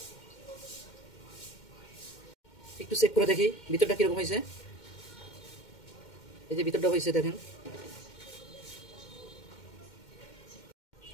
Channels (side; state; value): right; late; 2.1 ms